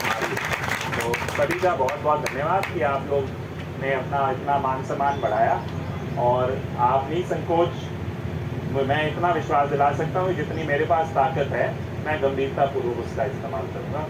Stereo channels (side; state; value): both; identical; correlation 1.00